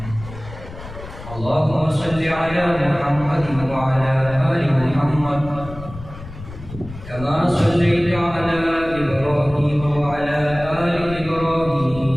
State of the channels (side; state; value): left; noise; rumble, 14 dB below the sound